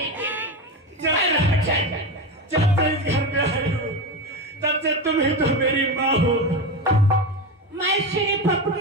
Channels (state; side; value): normal; both; correlation 0.19